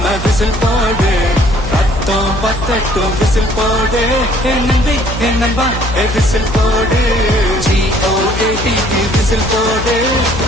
விசில் போடு, ரத்தம் பத்தட்டும் விசில் போடு, என் நம்பி என் நம்பா விசில் போடு, GOAT விசில் போடு,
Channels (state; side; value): noise; left; hum, 8 dB below the sound